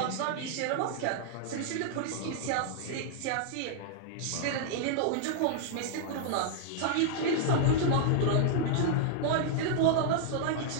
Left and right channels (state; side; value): different; both; correlation -0.01